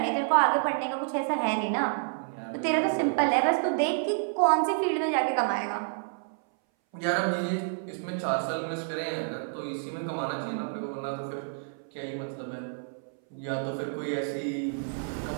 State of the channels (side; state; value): left; silent; 58 dB below the other